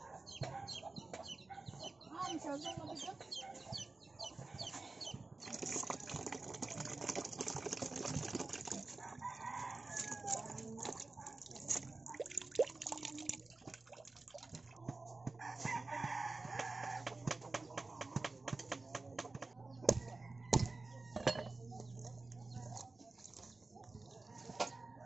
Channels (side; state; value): left; quieter; 3.5 dB